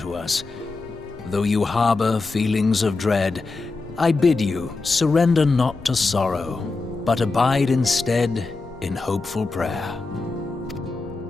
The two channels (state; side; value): quieter; right; 3.7 dB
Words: us. Though you harbor feelings of dread, I bid you surrender not to sorrow, but abide instead in hopeful prayer.